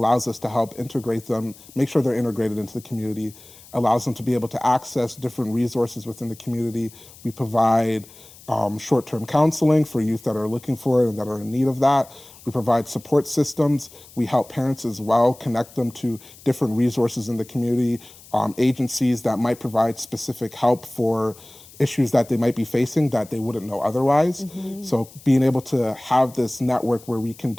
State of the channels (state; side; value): noise; left; hiss, 22 dB below the sound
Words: us to help integrate them, make sure they're integrated into the community, allows them to be able to access different resources within the community. We provide short-term counseling for youth that are looking for it and that are in need of that. We provide support systems. We help parents as well, connect them to different resources in the community, agencies that might provide specific help for issues that they might be facing that they wouldn't know otherwise. So being able to have this network where we can